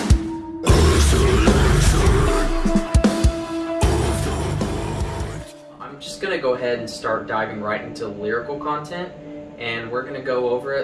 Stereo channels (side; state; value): both; identical; correlation 1.00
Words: I'm just going to go ahead and start diving right into lyrical content, and we're going to go over